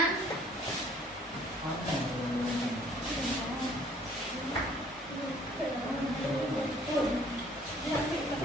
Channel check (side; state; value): both; normal; correlation 0.58